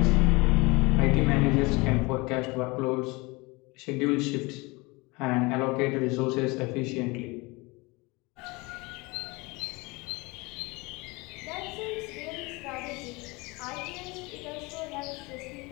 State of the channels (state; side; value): quieter; right; 25.1 dB